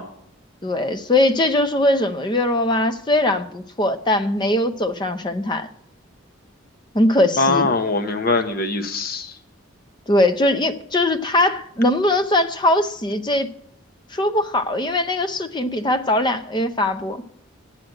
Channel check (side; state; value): both; normal; correlation 0.35